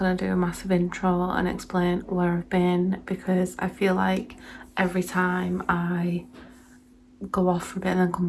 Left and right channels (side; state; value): both; identical; correlation 1.00